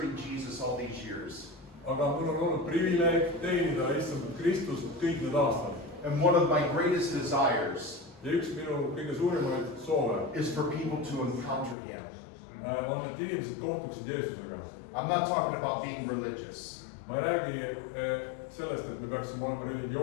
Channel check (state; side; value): drops out; right; at 11.8 s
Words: Jesus all these years. Aga mul on olnud privileeg teenida issand Kristust kõik need aastad. And one of my greatest desires Ja üks minu kõige suurimaid soove is for people to encounter Him. On, et inimesed kohtuksid Jeesusega. I'm not talking about being religious. Ma ei räägi sellest, et me peaksime olema